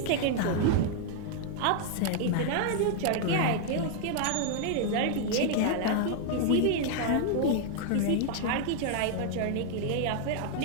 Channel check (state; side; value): different; both; correlation 0.00